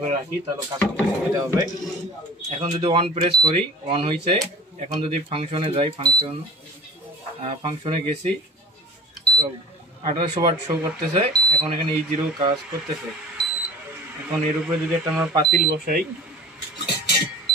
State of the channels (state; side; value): normal; both; correlation 0.40